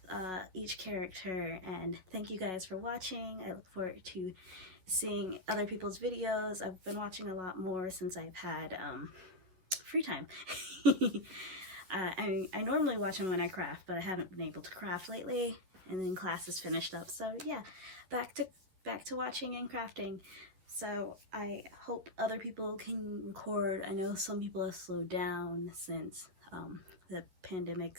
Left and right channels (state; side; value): late; left; 11 ms